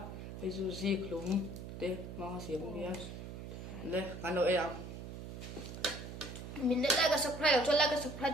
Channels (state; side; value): noise; right; hum, 9 dB below the sound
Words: hei chu zi khlum te ma siam ania le kan lo em mình đã like cái subscribe cho like cái subscribe